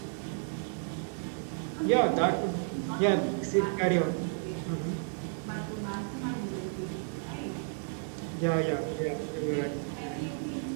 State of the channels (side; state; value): left; silent; 56 dB below the other